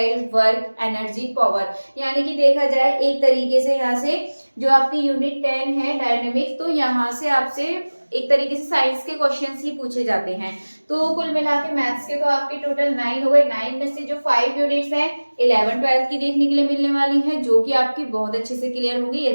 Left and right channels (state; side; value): inverted; both; correlation -1.00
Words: work, energy, power, यानी कि देखा जाए एक तरीके से यहाँ से जो आपकी यूनिट 10 है डायनेमिक, तो यहाँ से आपसे एक तरीके से साइंस के क्वेश्चंस ही पूछे जाते हैं। तो कुल मिला के मैथ्स के तो आपके टोटल 9 हो गए, 9 में से जो 5 यूनिट्स हैं 11-12 की देखने के लिए मिलने वाली हैं, जो कि आपकी बहुत अच्छे से क्लियर होंगी